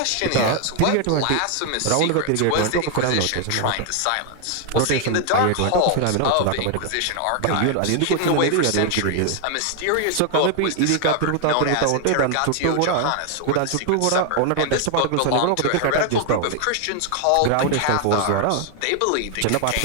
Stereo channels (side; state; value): both; different; correlation 0.00